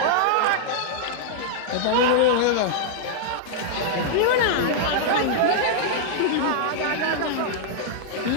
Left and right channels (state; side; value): different; both; correlation -0.02